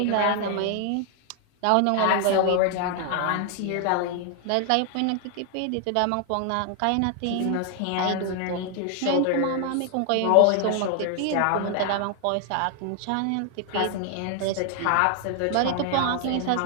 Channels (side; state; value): both; different; correlation 0.00